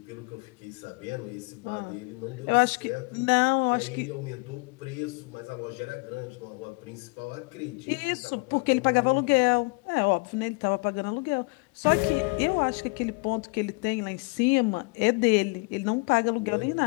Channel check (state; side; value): quieter; right; 29.2 dB